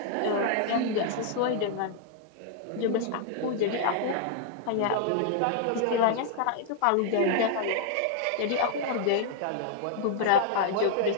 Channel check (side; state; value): both; different; correlation -0.01